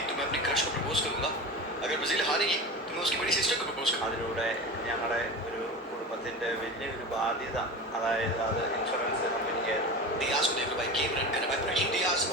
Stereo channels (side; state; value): both; normal; correlation 0.28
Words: तो मैं अपनी क्रश को प्रपोज करूंगा. अगर ब्राजील हारेगी तो मैं उसकी बड़ी सिस्टर को प्रपोज करूंगा. അതിലൂടെ ഞങ്ങളുടെ ഒരു കുടുംബത്തിൻ്റെ വലിയൊരു ബാധ്യത അതായത് അത് ഇൻഷുറൻസ് കമ്പനിക്ക് Diaz को देख लो भाई गेम रन करना भाई Brahim Diaz